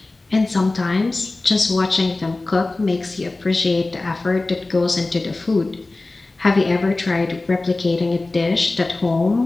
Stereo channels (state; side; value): quieter; right; 3.1 dB